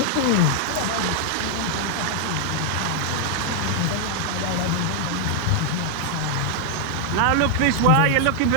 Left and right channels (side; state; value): both; different; correlation 0.00